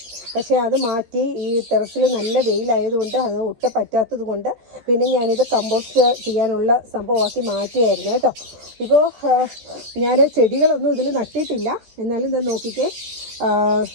പക്ഷേ അത് മാറ്റി ഈ ടെറസിൽ നല്ല വെയിലായതുകൊണ്ട് അത് ഒട്ടും പറ്റാത്തത് കൊണ്ട് പിന്നെ ഞാനിത് കമ്പോസ്റ്റ് ചെയ്യാനുള്ള സംഭവമാക്കി മാറ്റിയായിരുന്നു കേട്ടോ. ഇപ്പോൾ ഞാൻ ചെടികളൊന്നും ഇതിൽ നട്ടിട്ടില്ല. എന്നാലും ഇത് നോക്കിക്കേ,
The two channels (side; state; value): left; late; 13 ms